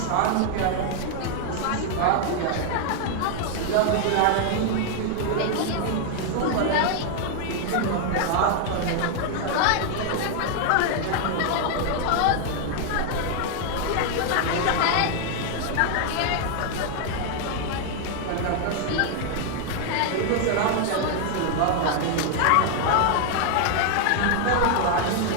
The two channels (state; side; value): different; both; correlation 0.00